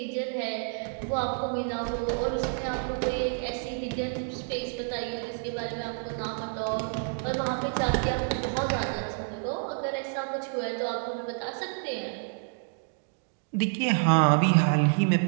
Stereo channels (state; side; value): silent; left; 59 dB below the other